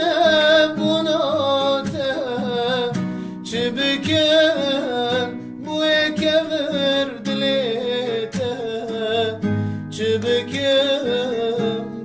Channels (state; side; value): identical; both; correlation 1.00